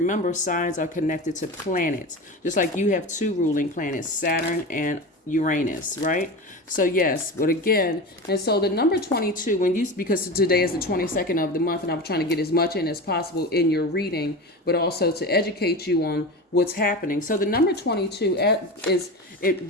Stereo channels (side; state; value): both; normal; correlation 0.27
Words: signs are connected to planets, just like you have 2 ruling planets, Saturn and Uranus, right? So yes, but again, and so the number 22, because today is the 22nd of the month, and I'm trying to get as much in as possible in your reading, but also to educate you on what's happening. So the number 22